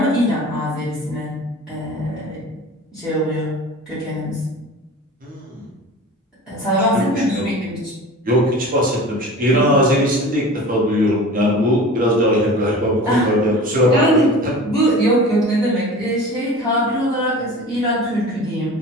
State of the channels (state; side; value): normal; both; correlation 0.37